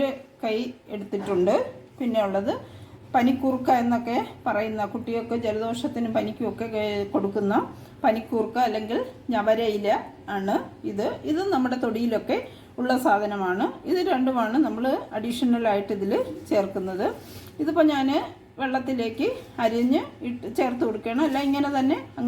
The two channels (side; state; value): both; identical; correlation 1.00